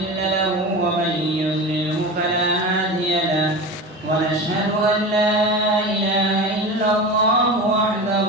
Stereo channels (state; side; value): normal; both; correlation 0.29